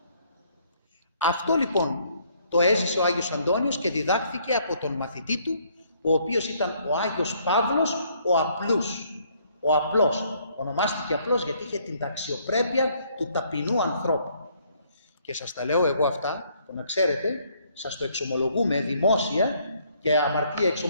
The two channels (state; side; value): inverted; both; correlation -0.66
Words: Αυτό λοιπόν το έζησε ο Άγιος Αντώνιος και διδάχθηκε από τον μαθητή του, ο οποίος ήταν ο Άγιος Παύλος, ο απλούς, ο απλός. Ονομάστηκε απλός γιατί είχε την αξιοπρέπεια του ταπεινού ανθρώπου. Και σας τα λέω εγώ αυτά, το να ξέρετε, σας το εξομολογούμε δημόσια και αμαρτία